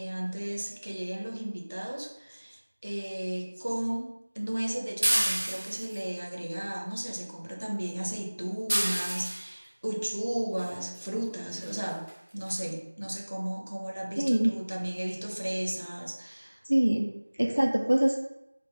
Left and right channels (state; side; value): inverted; both; correlation -1.00